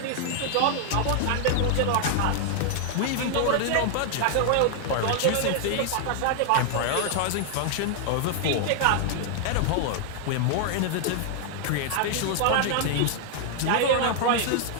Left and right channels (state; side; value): different; both; correlation 0.00